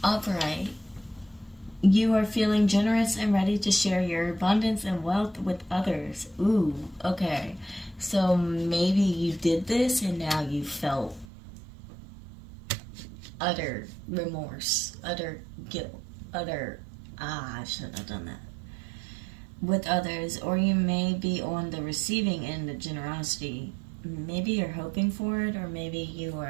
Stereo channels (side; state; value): left; drops out; at 11.2 s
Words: Alright. You are feeling generous and ready to share your abundance and wealth with others. Ooh, okay. So maybe you did this and now you felt utter remorse, utter guilt, utter, I shouldn't have done that, with others. Or you may be on the receiving end of generosity. Maybe you're hoping for it, or maybe you